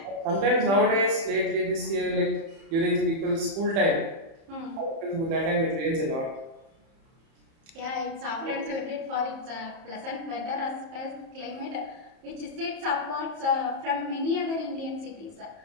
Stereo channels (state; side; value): late; left; 30 ms